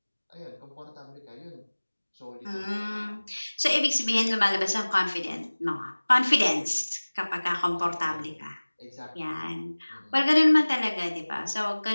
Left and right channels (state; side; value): inverted; both; correlation -1.00